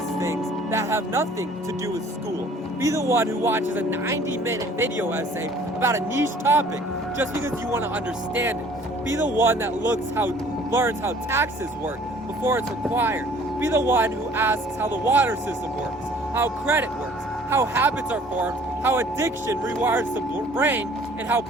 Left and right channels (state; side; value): normal; both; correlation 0.54